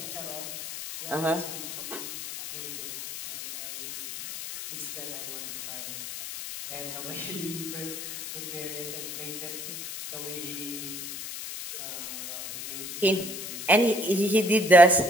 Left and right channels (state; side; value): noise; left; hiss, 8 dB below the sound